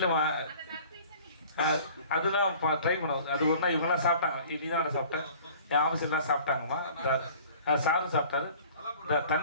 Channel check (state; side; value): inverted; both; correlation -0.48